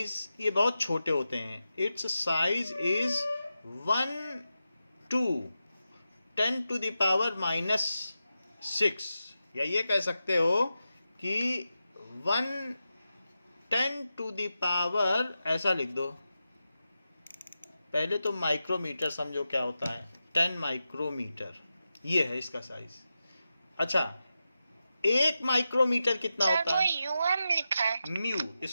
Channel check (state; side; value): inverted; both; correlation -0.91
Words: ये बहुत छोटे होते हैं, its size is 1 to 10 to the power -6, या ये कह सकते हो कि 10 to the power, ऐसा लिख दो। पहले तो माइक्रोमीटर समझो क्या होता है, 10 माइक्रोमीटर, ये है इसका साइज। अच्छा, 1 माइक्रोमीटर कितना सर होता वो है? यूएम लिखा है। म्यू,